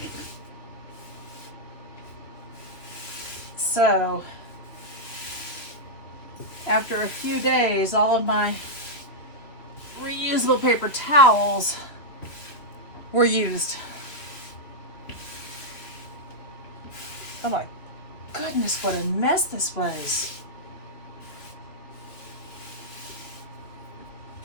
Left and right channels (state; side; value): late; right; 2.9 ms